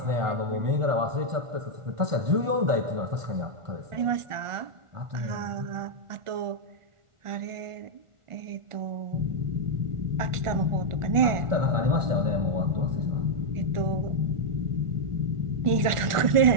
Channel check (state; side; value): late; left; 1.4 ms